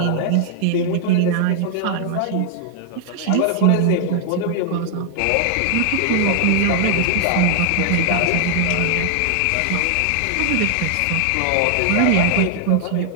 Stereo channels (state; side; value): different; both; correlation 0.00